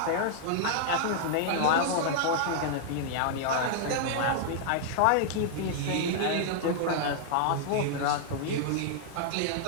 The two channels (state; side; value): different; both; correlation -0.01